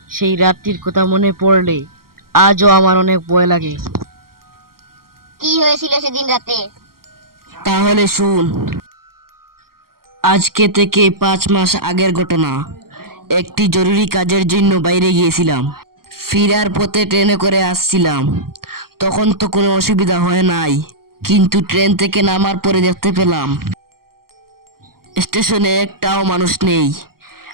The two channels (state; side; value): late; left; 0.93 ms